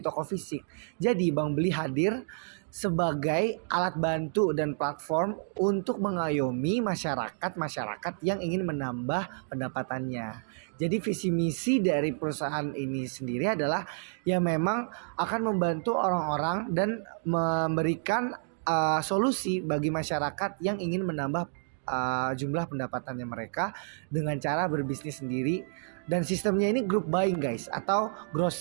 toko fisik. Jadi Bank Beli hadir sebagai alat bantu dan platform untuk mengayomi masyarakat yang ingin menambah pendapatannya. Jadi visi misi dari perusahaan ini sendiri adalah yang memang akan membantu orang-orang dan memberikan solusi bagi masyarakat yang ingin menambah jumlah pendapatannya mereka dengan cara berbisnis sendiri. Dan sistemnya ini group buying guys, atau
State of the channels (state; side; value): silent; left; digital silence